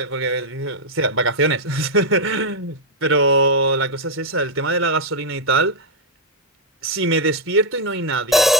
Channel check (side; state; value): both; normal; correlation -0.02